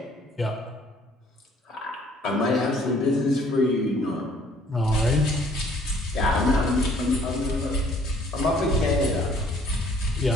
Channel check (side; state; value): both; normal; correlation 0.59